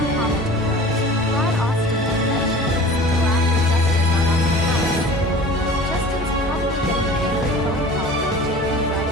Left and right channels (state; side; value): normal; both; correlation 0.42